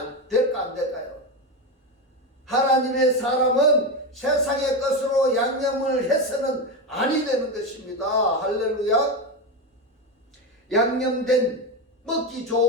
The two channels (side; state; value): both; normal; correlation 0.15